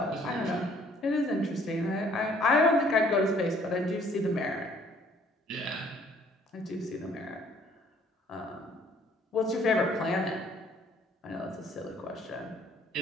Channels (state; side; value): normal; both; correlation 0.59